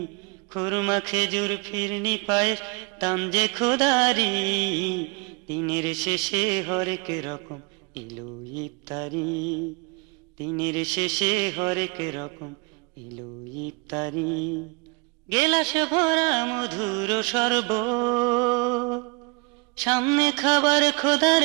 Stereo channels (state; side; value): quieter; left; 30.6 dB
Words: খুরমা খেজুর ফিরনি পায়েস দাম যে খোদারি। দিনের শেষে হরেক রকম এলো ইফতারি, দিনের শেষে হরেক রকম এলো ইফতারি। গেলাস ভরা মধুর শরবত, সামনে খাবার খোদার